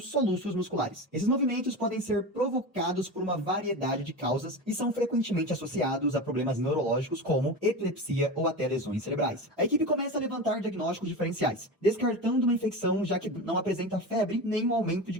musculares. Esses movimentos podem ser provocados por uma variedade de causas e são frequentemente associados a problemas neurológicos como epilepsia ou até lesões cerebrais. A equipe começa a levantar diagnósticos diferenciais, descartando uma infecção já que não apresenta febre nem um aumento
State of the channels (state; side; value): normal; both; correlation 0.25